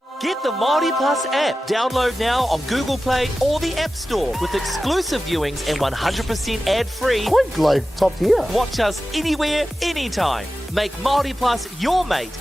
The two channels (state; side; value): normal; both; correlation 0.94